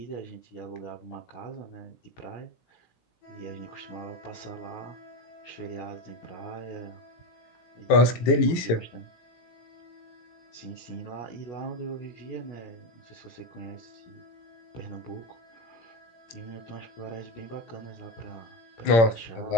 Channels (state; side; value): late; right; 17 ms